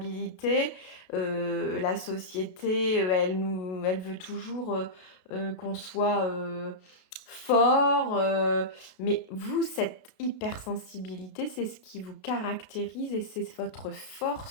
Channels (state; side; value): late; right; 32 ms